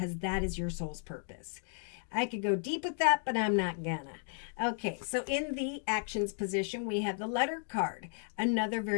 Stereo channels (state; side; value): silent; right; 55 dB below the other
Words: that is your soul's purpose. I could go deep with that, but I'm not gonna. Okay, so in the actions position, we have the letter card, another